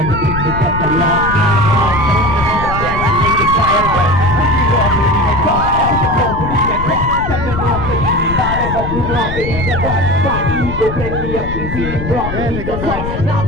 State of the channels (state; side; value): noise; left; rumble, 6 dB below the sound